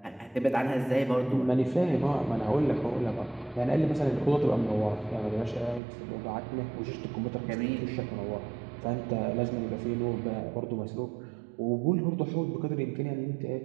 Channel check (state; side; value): drops out; left; at 5.8 s